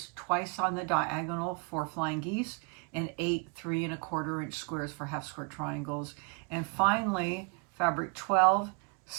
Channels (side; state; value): left; quieter; 33.7 dB